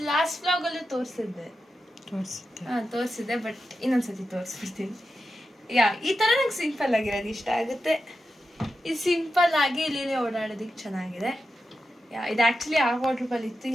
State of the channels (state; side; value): normal; both; correlation 0.90